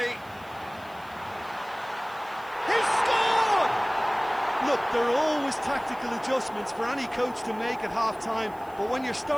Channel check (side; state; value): right; noise; hiss, 26 dB below the sound